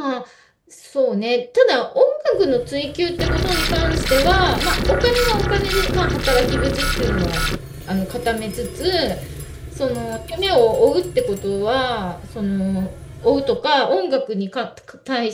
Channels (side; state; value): both; identical; correlation 1.00